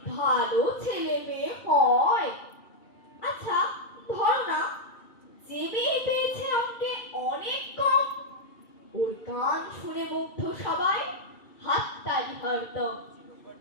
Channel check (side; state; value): right; late; 2.3 ms